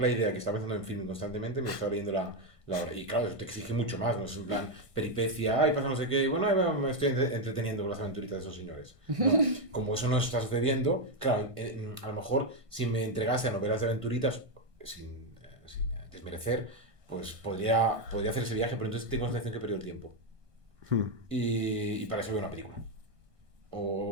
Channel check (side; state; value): left; late; 1.5 ms